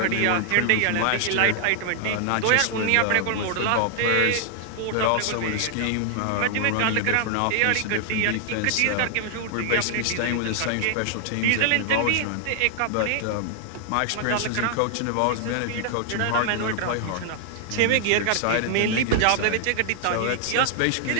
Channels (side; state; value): both; different; correlation 0.00